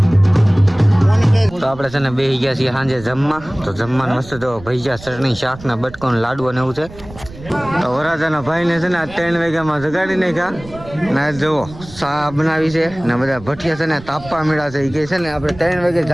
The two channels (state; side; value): noise; right; rumble, 17 dB below the sound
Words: તો આપણે છે ને બેસી ગયા છીએ સાંજે જમવા. તો જમવાનું મસ્ત જો ભજીયા ચટણી શાક ને બટકો ને લાડુ ને એવું છે. તો વરાજાના ભાઈને છે ને આ 3 વાગ્યામાં જગાડી નાખ્યા ને જુઓ ચા બનાવી છે ને બધા ભઠિયા છે ને તાપવા મળ્યા છે. એ કહે છે ને આપણે 3 વાગે